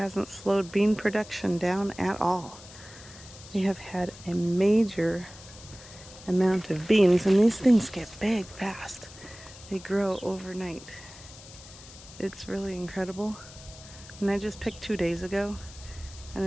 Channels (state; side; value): noise; left; hiss, 18 dB below the sound